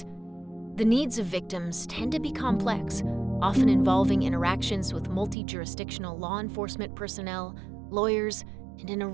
The needs of victims tend to be complex, often involving interactions with multi-jurisdictional law enforcement personnel, lawyers, and an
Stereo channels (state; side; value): drops out; left; at 5.4 s